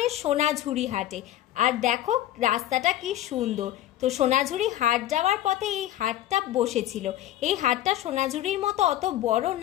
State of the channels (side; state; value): right; quieter; 13.3 dB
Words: सोनाझुरी हाटे। और देखो रास्ताटा कि सुंदर। तो सोनाझुरी हाट जाওয়ার पथे এই हाटटा बसेছিল। এই हाटटा सोनाझुरीर मतो अत बड़ो